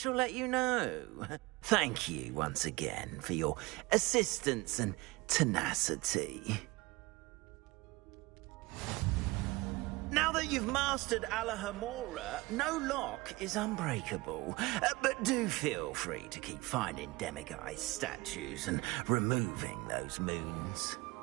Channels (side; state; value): left; quieter; 22.6 dB